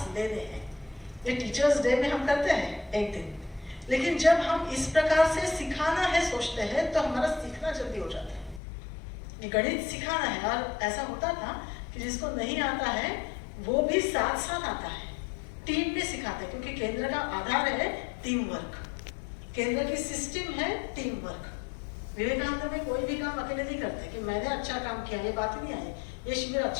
लेने हैं? ये टीचर्स डे में हम करते हैं एक दिन, लेकिन जब हम इस प्रकार से सिखाना है सोचते हैं तो हमारा सीखना जल्दी हो जाता है। गणित सिखाना है, और ऐसा होता था कि जिसको नहीं आता है वो भी साथ साथ आता है, टीम में सिखाते हैं, क्योंकि केंद्र का आधार है टीम वर्क, केंद्र की सिस्टम है टीम वर्क। विवेकानंद में कोई भी काम अकेले नहीं करते कि मैंने अच्छा काम किया, ये बात ही नहीं आई। ये शिविर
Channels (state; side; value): drops out; right; at 8.6 s